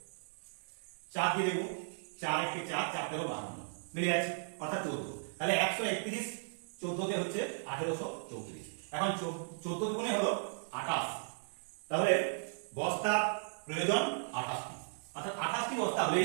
4 দিয়ে দেব, 4 1 4 4 13 52 মিলে যাচ্ছে, অর্থাৎ 14। তাহলে 131 14 তে হচ্ছে 1834। এখন 14 গুণে হলো 28, তাহলে বস্তা প্রয়োজন 28টি, অর্থাৎ 28টি বস্তা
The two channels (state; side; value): silent; left; digital silence